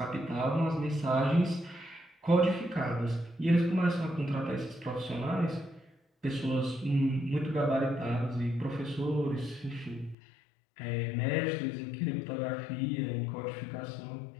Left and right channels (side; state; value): right; drops out; at 10.2 s